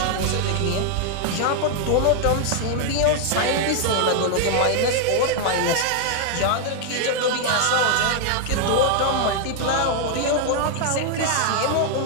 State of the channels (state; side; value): different; both; correlation 0.00